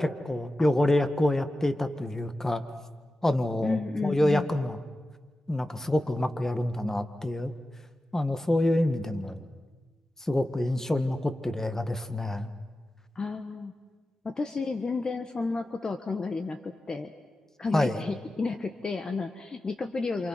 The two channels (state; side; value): normal; both; correlation 0.93